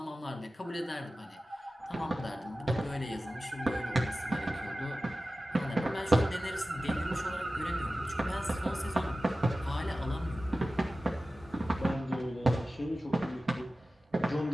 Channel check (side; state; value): both; normal; correlation 0.95